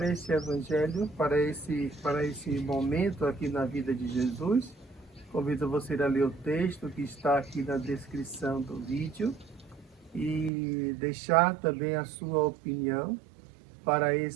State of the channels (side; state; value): left; drops out; at 10.5 s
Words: esse evangelho, para esse momento aqui na vida de Jesus. Convido você a ler o texto que está aqui na descrição do vídeo e deixar também a sua opinião para